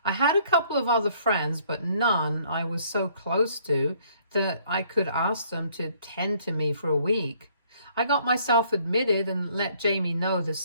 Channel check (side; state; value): both; inverted; correlation -0.62